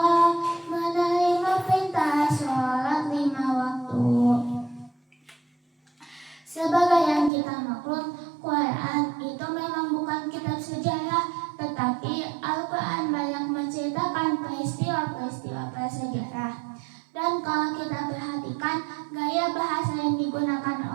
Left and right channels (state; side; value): drops out; left; at 7.3 s